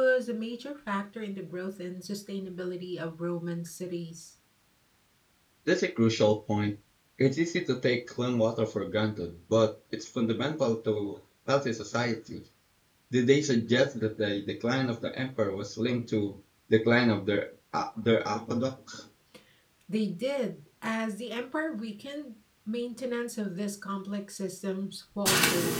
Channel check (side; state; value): both; identical; correlation 1.00